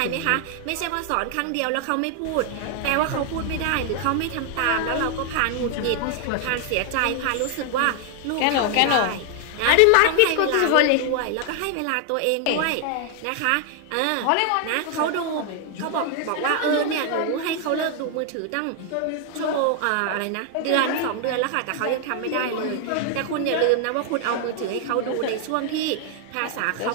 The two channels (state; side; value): different; both; correlation 0.00